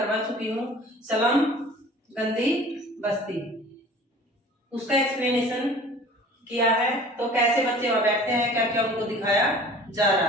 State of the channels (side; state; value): both; normal; correlation 0.45